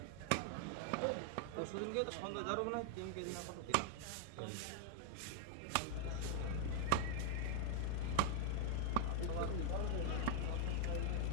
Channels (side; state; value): both; different; correlation 0.00